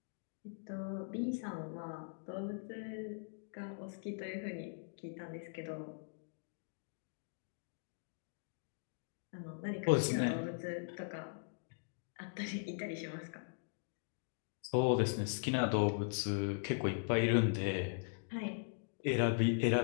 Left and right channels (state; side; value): silent; right; digital silence